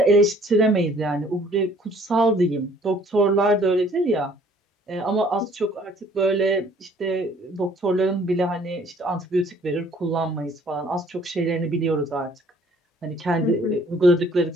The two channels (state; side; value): normal; both; correlation 0.58